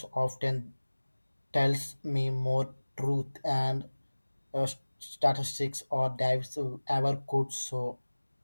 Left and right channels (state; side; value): inverted; both; correlation -1.00